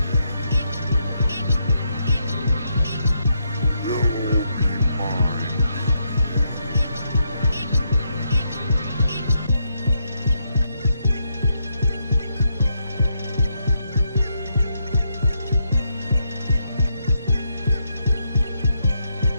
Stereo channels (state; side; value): inverted; both; correlation -0.81